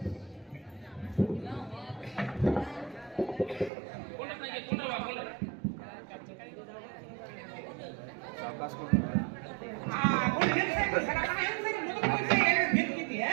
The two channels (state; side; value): drops out; left; at 3.7 s